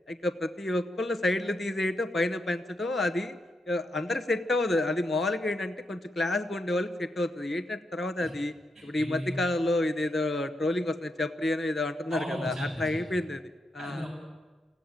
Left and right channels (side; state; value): both; normal; correlation 0.82